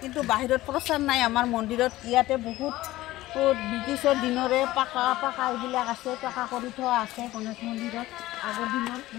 কিন্তু বাহিৰত প্ৰচাৰ নাই আমাৰ মন্দিৰত ইয়াতে বহুত ব্ৰিটিছৰ দিনৰে পাকা এইবিলাক আছে পাকা কৰি থোৱা আছে গণেশ মন্দিৰত আগৰ দিনৰ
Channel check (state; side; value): quieter; right; 16.8 dB